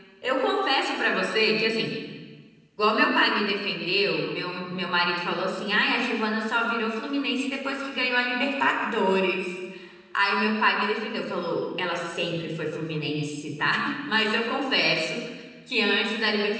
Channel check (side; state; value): both; identical; correlation 1.00